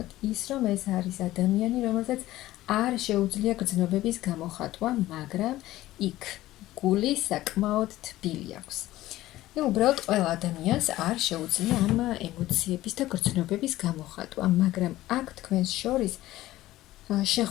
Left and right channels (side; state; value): right; quieter; 15.9 dB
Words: ის, რომ ეს არის ადამიანი, რომელსაც არ შეუძლია გრძნობების გამოხატვა, მაგრამ იქ გული საკმაოდ თბილი აქვს. უბრალოდ ყველა ადამიანს არ შეუძლია ამ ემოციების და გრძნობების გამოხატვა, მაგრამ აქ თქვენს შორის